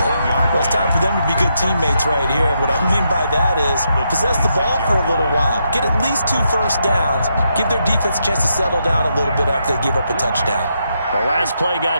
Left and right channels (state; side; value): inverted; both; correlation -0.81